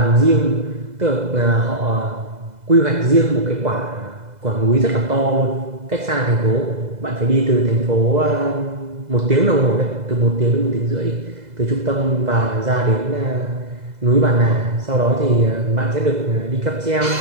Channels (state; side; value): late; left; 2.0 ms